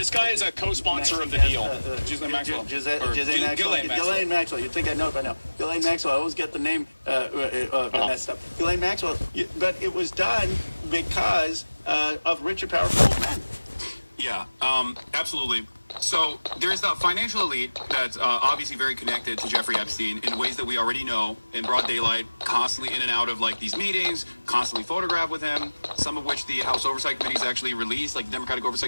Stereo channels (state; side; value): inverted; both; correlation -1.00